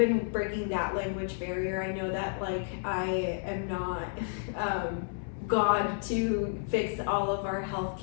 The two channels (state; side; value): silent; right; 57 dB below the other